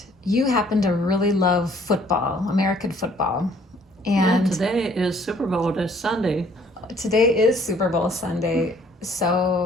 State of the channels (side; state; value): both; normal; correlation 0.60